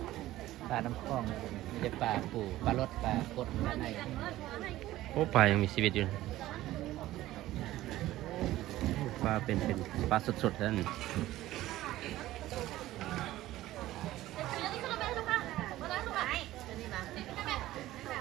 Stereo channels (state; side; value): quieter; left; 15.5 dB